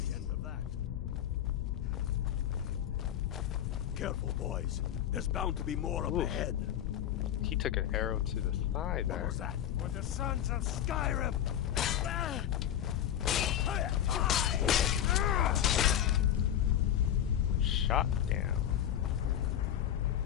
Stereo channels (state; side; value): quieter; right; 10.6 dB